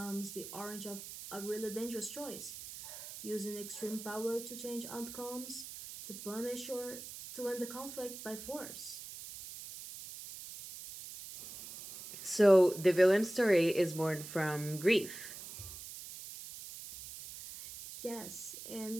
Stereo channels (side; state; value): right; noise; hiss, 11 dB below the sound